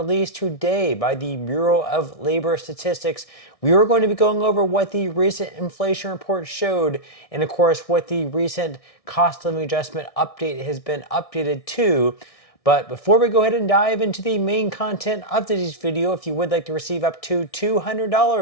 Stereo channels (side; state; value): right; late; 1.6 ms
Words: today by the Bureau of Labor Statistics. We are going to be going over what the recent inflation report showed, and of course, what the recent cost of living adjustment update has been updated to. But before we go ahead and dive into the main content of today's video, if you would like to receive up to